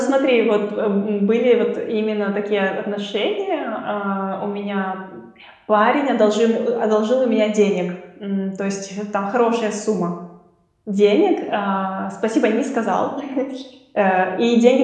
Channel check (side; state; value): both; identical; correlation 1.00